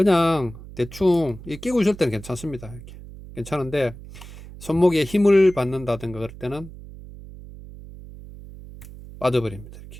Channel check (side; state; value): right; noise; hum, 16 dB below the sound